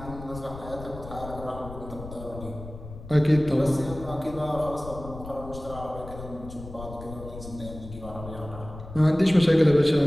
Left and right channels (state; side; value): noise; left; rumble, 13 dB below the sound